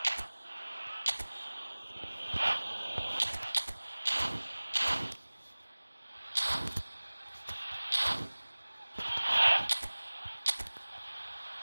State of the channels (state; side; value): inverted; both; correlation -1.00